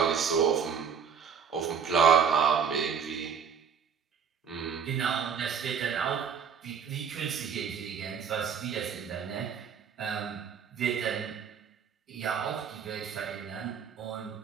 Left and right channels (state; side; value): quieter; left; 6.9 dB